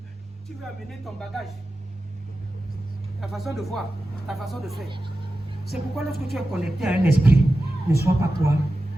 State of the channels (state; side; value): normal; both; correlation 0.93